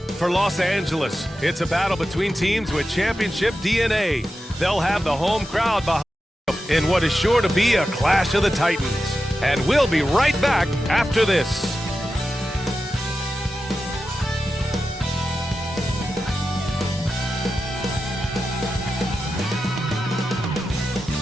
for Los Angeles, it's a battle between teams with championship DNA. They'll have the home crowd behind them in what is sure to be a clash of the Titans. And we'll be right back after this.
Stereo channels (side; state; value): both; normal; correlation 0.91